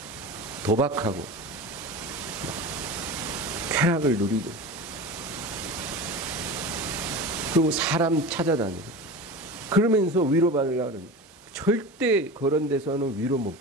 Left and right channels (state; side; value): normal; both; correlation 0.30